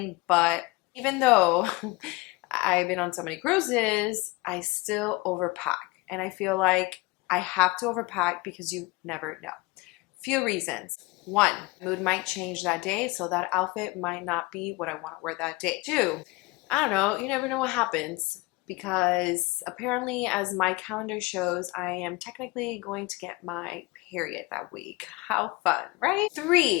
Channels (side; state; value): right; quieter; 23.6 dB